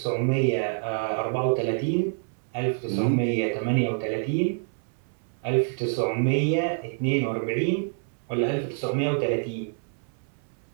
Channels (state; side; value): silent; left; 60 dB below the other